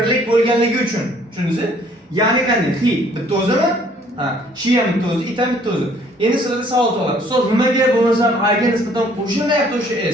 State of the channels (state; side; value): normal; both; correlation 0.60